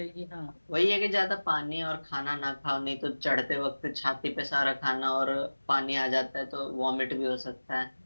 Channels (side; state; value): both; inverted; correlation -1.00